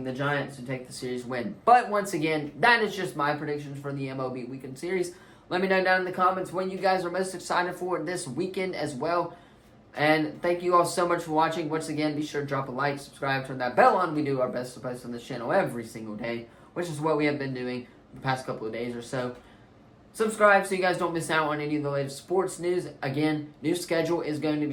the Giants to take the series win. But once again, that is just my predictions for the MLB Weekend Series. Let me know down in the comments what you guys are most excited for this weekend as well. And thank you all so much for watching. Once again, be sure to drop a like, subscribe, turn that bell on. We do our best to post on this channel every single day, which is what we have been doing the past couple of days or so. Subscribe so you guys don't miss out on any of the latest sports news. Again, new schedule is going to be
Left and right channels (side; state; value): both; identical; correlation 1.00